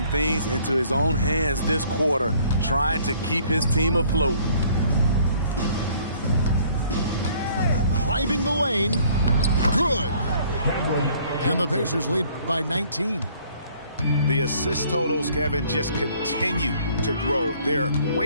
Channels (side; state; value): both; inverted; correlation -0.59